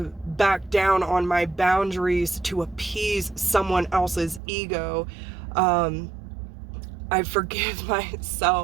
back down on my boundaries to appease someone else's ego. I forgive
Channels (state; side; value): drops out; left; at 4.4 s